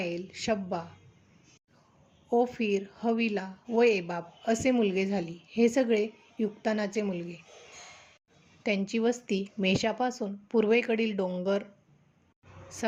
शब्बा, ओफीर, हविला व एबाब असे मुलगे झाली. हे सगळे युक्तानाचे मुलगे. त्यांची वस्ती मेषापासून पूर्वेकडील डोंगर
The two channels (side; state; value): both; identical; correlation 1.00